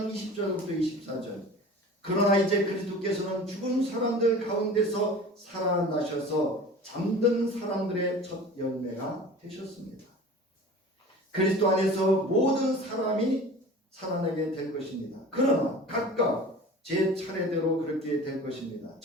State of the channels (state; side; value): normal; both; correlation 0.39